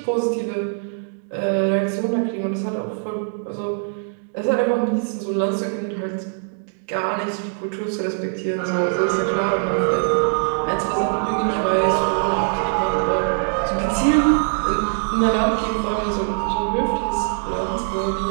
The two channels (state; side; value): silent; left; digital silence